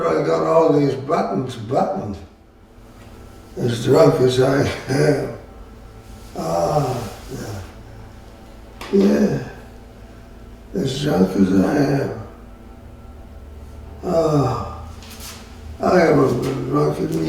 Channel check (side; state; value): both; identical; correlation 1.00